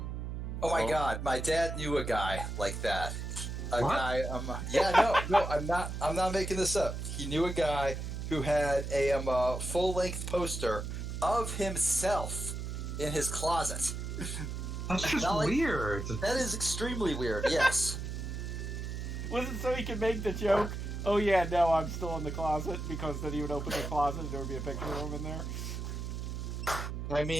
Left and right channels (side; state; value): right; noise; hum, 5 dB below the sound